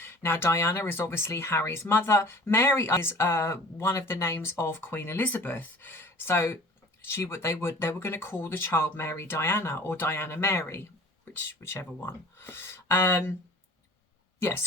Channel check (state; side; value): normal; both; correlation 0.46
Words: Now, Diana is obviously Harry's mother. Mary is one of the names of Queen Elizabeth. So they were going to call the child Mary Diana or Diana Mary, whichever one. Diana